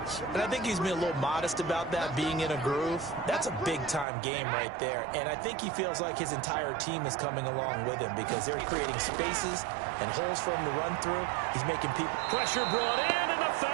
And I think he's been a little modest about that, being in a groove. That's a big-time game right there. And I think he feels like his entire team is coming along with him because they're creating spaces and holes for him to run through. He's making people... Pressure brought in, and the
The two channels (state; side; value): drops out; left; at 4.0 s